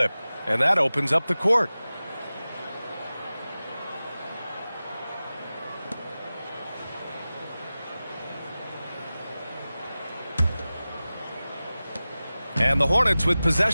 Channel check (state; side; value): inverted; both; correlation -0.96